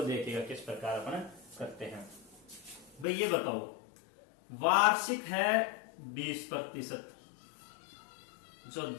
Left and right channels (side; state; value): right; drops out; at 3.1 s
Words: देखिएगा किस प्रकार अपन करते हैं। भाई ये बताओ वार्षिक है 20%, जो